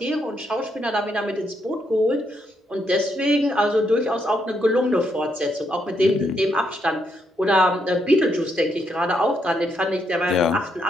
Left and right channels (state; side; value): normal; both; correlation 0.77